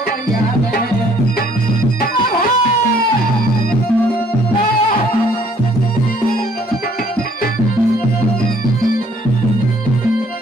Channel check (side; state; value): both; normal; correlation 0.62